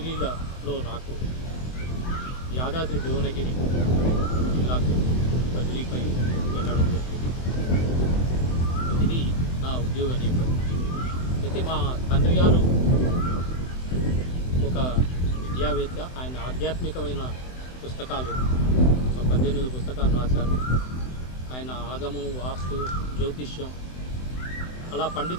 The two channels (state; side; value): late; right; 24 ms